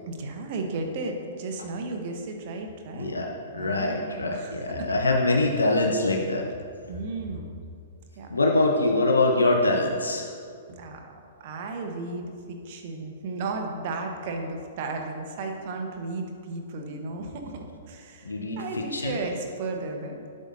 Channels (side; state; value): both; inverted; correlation -0.58